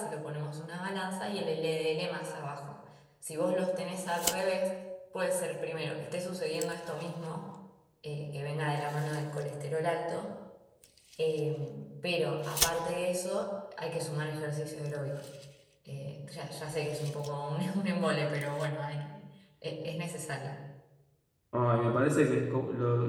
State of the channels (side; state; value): both; identical; correlation 1.00